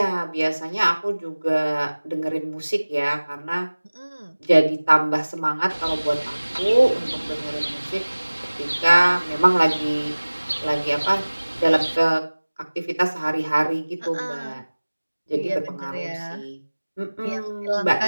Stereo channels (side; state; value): both; inverted; correlation -1.00